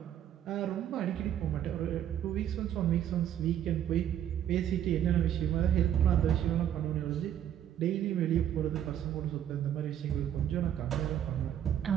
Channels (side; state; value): left; quieter; 10.5 dB